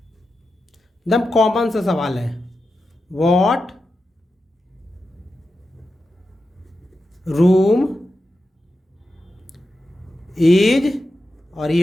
एकदम कॉमन सा सवाल है। व्हाट रूम इज, और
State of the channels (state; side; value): normal; both; correlation 0.90